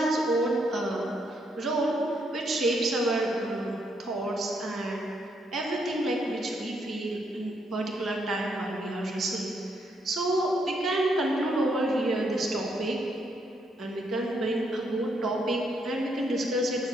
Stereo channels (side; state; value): both; normal; correlation 0.75